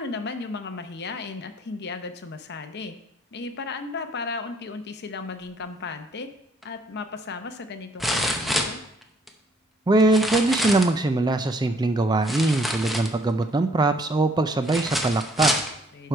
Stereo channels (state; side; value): normal; both; correlation 0.64